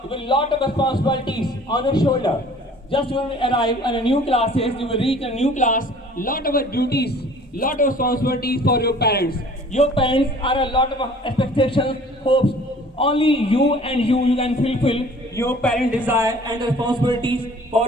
you will lot of responsibilities on your shoulder. Just you will arrive in a new classes, you will reach a new class, lot of duties, lot of responsibilities for your parents. Your parents are a lot of expectations, hopes. Only you and you can fulfill your parent desire and responsibilities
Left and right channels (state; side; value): normal; both; correlation 0.50